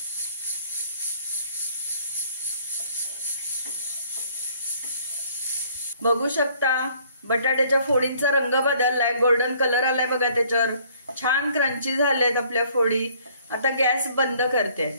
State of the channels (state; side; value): inverted; both; correlation -0.60